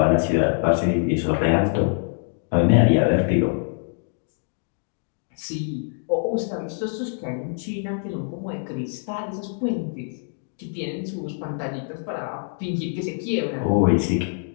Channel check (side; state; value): right; silent; digital silence